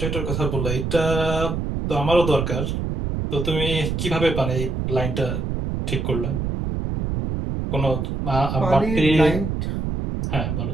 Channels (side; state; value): right; noise; rumble, 2 dB below the sound